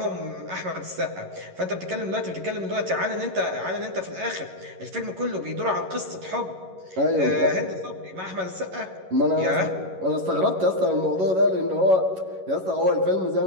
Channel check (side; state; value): left; late; 11 ms